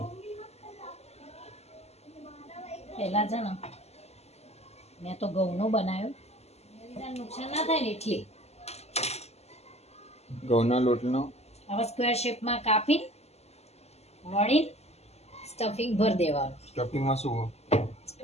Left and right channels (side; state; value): right; late; 0.30 ms